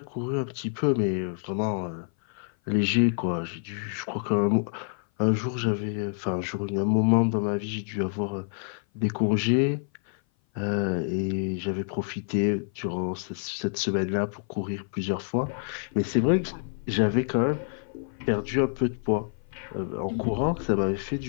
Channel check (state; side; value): silent; right; 57 dB below the other